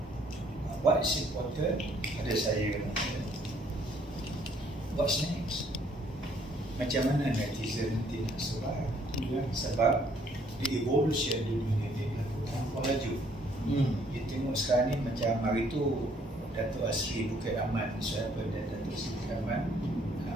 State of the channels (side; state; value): both; normal; correlation 0.64